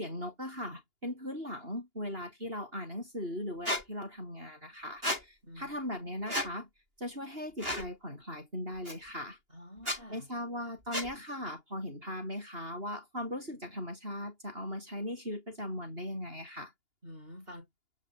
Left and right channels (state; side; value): late; left; 2.8 ms